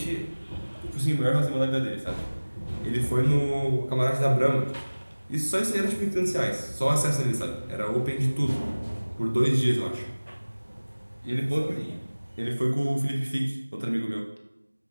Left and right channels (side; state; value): both; inverted; correlation -1.00